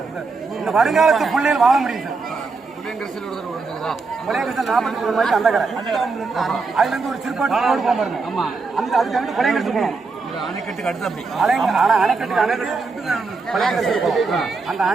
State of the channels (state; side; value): quieter; left; 4.2 dB